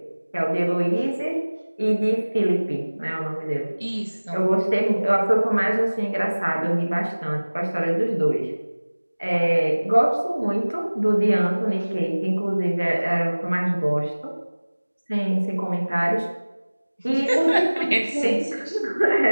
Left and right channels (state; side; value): inverted; both; correlation -1.00